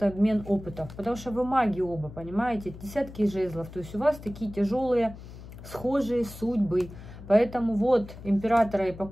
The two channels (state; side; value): noise; left; hum, 15 dB below the sound